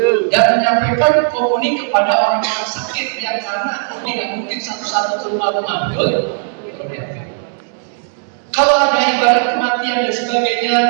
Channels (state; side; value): silent; left; digital silence